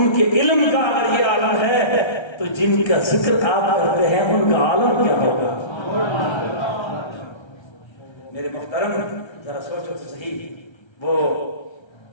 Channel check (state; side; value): late; right; 1.3 ms